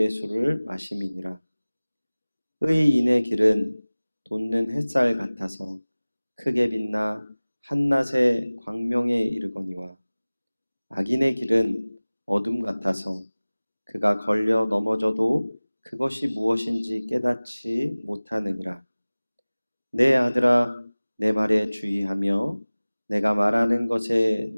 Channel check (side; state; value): both; inverted; correlation -0.99